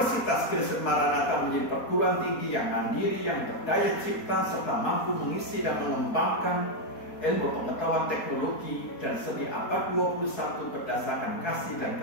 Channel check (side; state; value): right; late; 4.2 ms